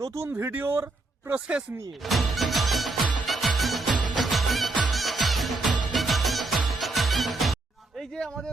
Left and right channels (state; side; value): quieter; left; 3.3 dB